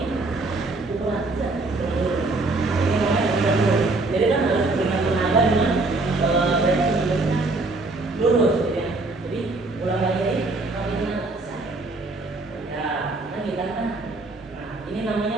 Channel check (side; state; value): left; quieter; 3.3 dB